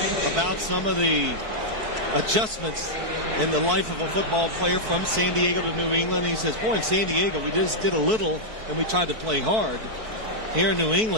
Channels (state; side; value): late; left; 4.6 ms